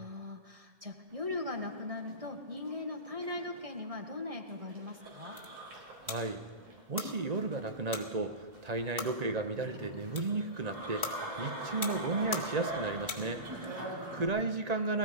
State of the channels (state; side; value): late; left; 1.4 ms